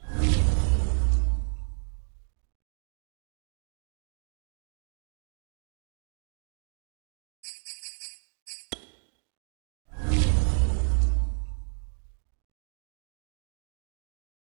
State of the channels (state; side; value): silent; left; 57 dB below the other